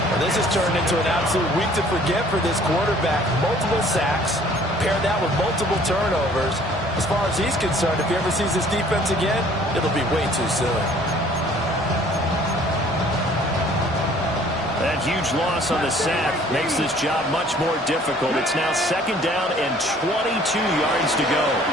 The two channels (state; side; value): normal; both; correlation 0.55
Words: Well, this has turned into an absolute week to forget for this quarterback. Multiple sacks, pair that with multiple turnovers. As far as he's concerned, if he ever sees this defense again, it'll be way too soon. That huge loss on the sack makes this job much more difficult. It's now 2nd down and 22 yards to go.